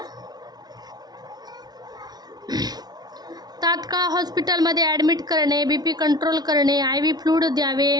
तात्काळ हॉस्पिटलमध्ये ॲडमिट करणे, BP कंट्रोल करणे, IV फ्लूइड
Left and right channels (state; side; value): late; left; 0.19 ms